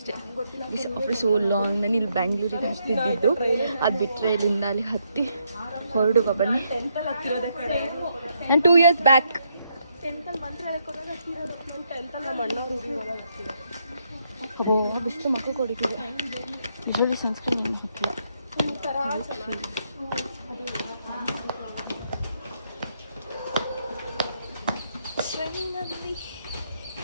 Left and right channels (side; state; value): both; inverted; correlation -0.77